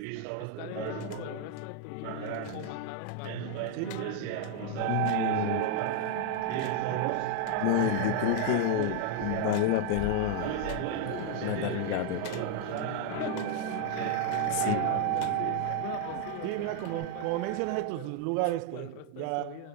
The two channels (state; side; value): different; both; correlation 0.00